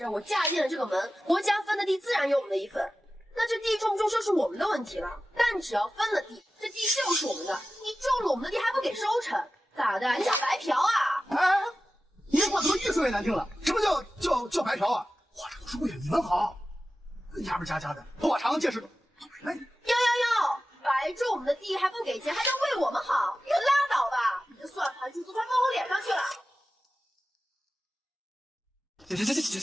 儿，我嫁进了这个门，国家分的地自然有我们的一份。那这地种不种就是我们的问题了。但只要分了地，这地就是我们的。你种了我们的地还不给收成，咋的？你想白嫖啊？你这话怎么越说越难听了？什么叫白嫖啊？我这都是为了你们好。牙不加的，头发长见识短。哟，白种我们的地还不给钱，还能为我们好？你可拉倒吧！你这算盘珠子快放我脸上去了。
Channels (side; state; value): both; normal; correlation 0.94